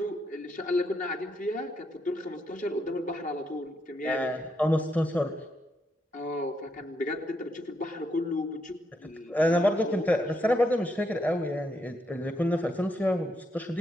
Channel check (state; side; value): normal; both; correlation 0.79